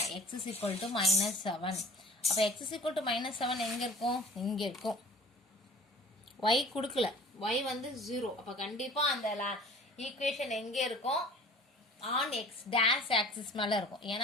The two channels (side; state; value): both; normal; correlation 0.45